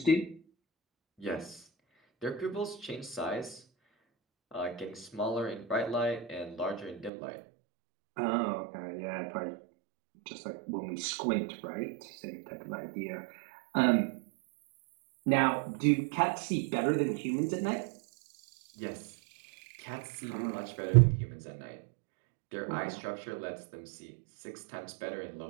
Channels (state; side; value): drops out; left; at 7.1 s